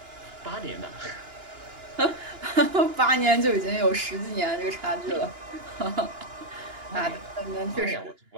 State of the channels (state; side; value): late; left; 2.9 ms